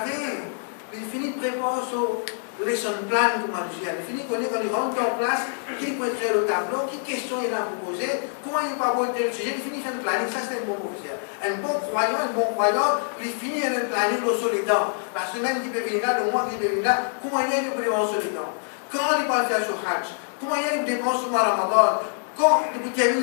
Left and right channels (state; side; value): silent; right; digital silence